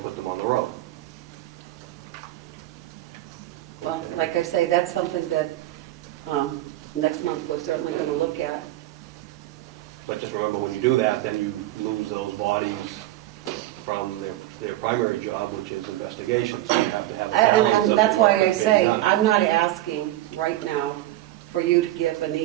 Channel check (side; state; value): left; quieter; 15.4 dB